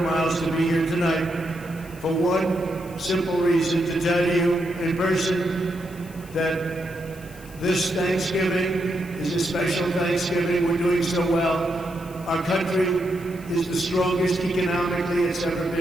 miles to be here tonight for one simple reason, to tell you in person that this Thanksgiving is a special Thanksgiving. We're doing so well. Our country is the strongest economically it's ever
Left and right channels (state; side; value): noise; left; hiss, 22 dB below the sound